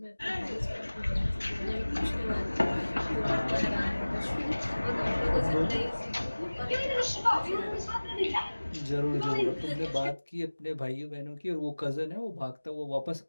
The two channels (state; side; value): inverted; both; correlation -1.00